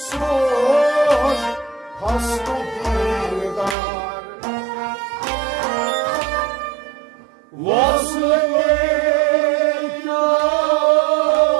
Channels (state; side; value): drops out; left; at 3.8 s